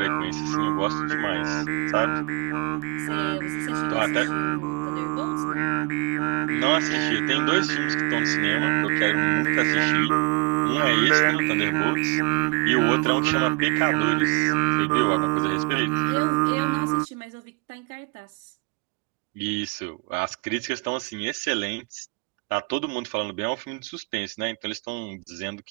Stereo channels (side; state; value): left; quieter; 30.2 dB